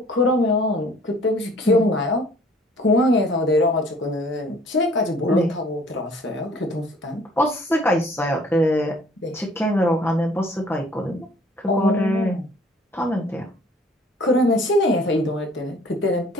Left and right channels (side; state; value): both; normal; correlation 0.54